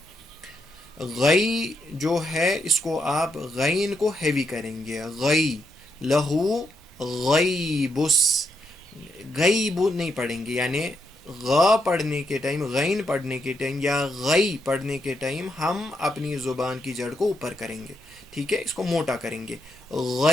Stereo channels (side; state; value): both; normal; correlation 0.80